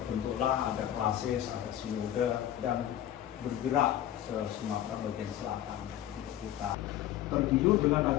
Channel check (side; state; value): right; quieter; 12.1 dB